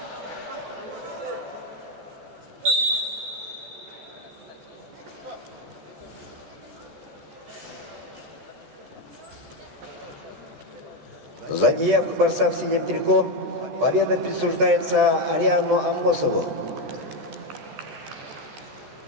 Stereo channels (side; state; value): left; late; 13 ms